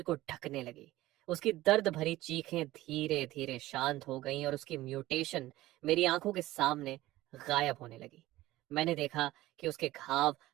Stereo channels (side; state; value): left; quieter; 16.7 dB